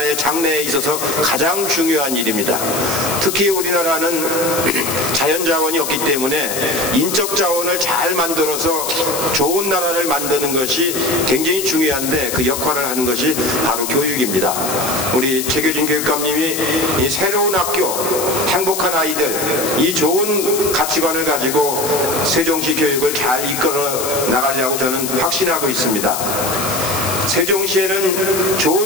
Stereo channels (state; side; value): noise; left; hiss, 4 dB below the sound